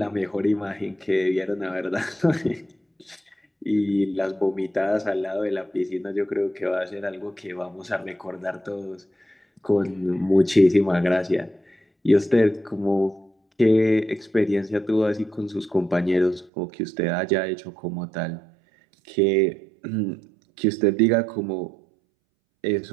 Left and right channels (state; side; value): drops out; left; at 16.5 s